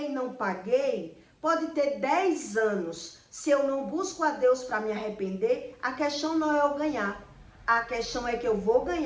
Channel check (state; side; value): identical; both; correlation 1.00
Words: e não paguei, pode ter 10 anos. Se eu não busco a Deus para me arrepender, a questão não é eu ganhar. A questão é que eu vou